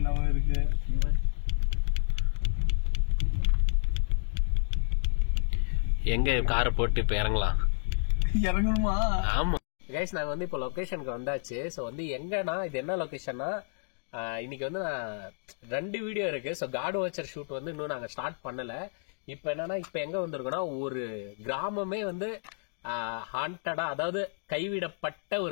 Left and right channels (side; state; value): right; silent; digital silence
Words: இருக்கு. எங்க காரை போட்டு இப்ப இறங்கணுமா? ஆமா கைஸ் நாங்க வந்து இப்ப லொகேஷனுக்கு வந்தாச்சு. சோ வந்து எங்கன்னா இது என்ன லொகேஷன்னா இன்னைக்கு வந்து நான் 2 வீடியோ இருக்கு. ஸோ காட் வாட்சர் ஷூட் வந்து இன்னும் நாங்கள் ஸ்டார்ட் பண்ணல. இப்போ என்னன்னா இப்போ எங்க வந்திருக்கோம்னா ஒரு கிராமமே வந்து ஹாண்டடா அதாவது கைவிடப்பட்ட